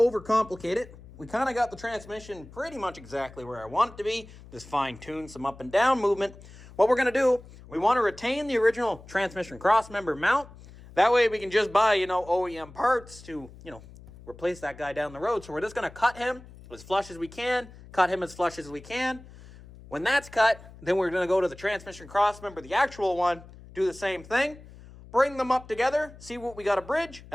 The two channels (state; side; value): noise; left; hum, 19 dB below the sound